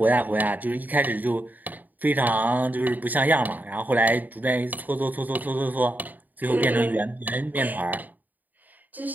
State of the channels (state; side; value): late; left; 0.084 ms